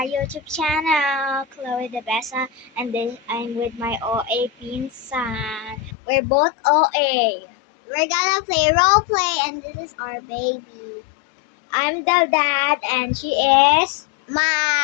YouTube channel, Chloe De Besa, and I'm with my OA pinsan. We're both OA. We're gonna play role play, and this is our baby. I'm the dad, and she is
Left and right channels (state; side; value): drops out; right; at 6.0 s